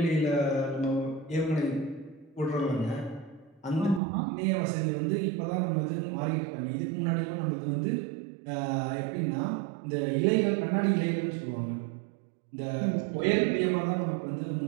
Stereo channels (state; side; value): drops out; left; at 4.0 s